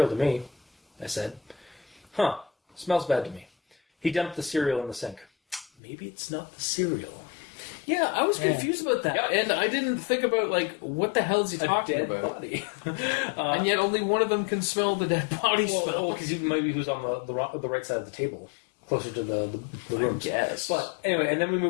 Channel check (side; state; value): right; drops out; at 5.7 s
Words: to me, I said. Huh. Smells bad to me. He dumped the cereal in the sink. Maybe it's not the cereal. Yeah, I was confused about that, and I didn't think about what the hell is he talking dead about? Body. And yet, only one of them can smell the dead body smell. Because maybe he was on the right side of the table, closer to the room. Yes. But anyway, and then we